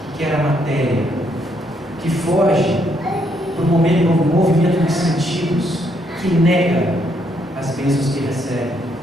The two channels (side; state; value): both; normal; correlation 0.73